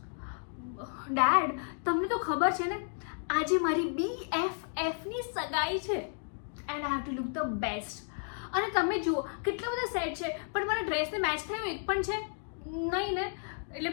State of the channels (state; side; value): silent; right; 56 dB below the other